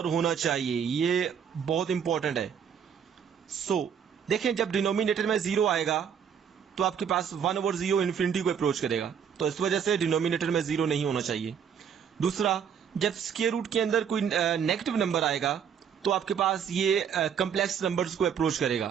होना चाहिए। ये बहुत इंपॉर्टेंट है। सो देखें, जब डिनोमिनेटर में 0 आएगा तो आपके पास 1/0 इन्फिनिटी को अप्रोच करेगा, तो इस वजह से डिनोमिनेटर में 0 नहीं होना चाहिए। दूसरा, जब स्क्वायर रूट के अंदर कोई नेगेटिव नंबर आएगा तो आपके पास ये कम्प्लेक्स नंबर्स को अप्रोच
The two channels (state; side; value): quieter; left; 7.7 dB